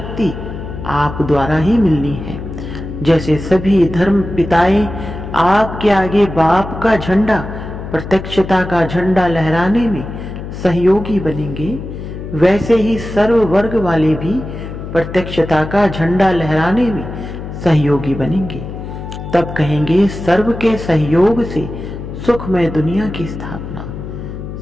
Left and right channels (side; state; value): left; noise; hum, 9 dB below the sound